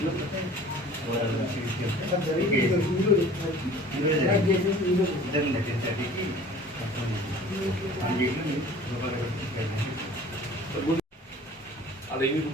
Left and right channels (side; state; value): both; normal; correlation 0.46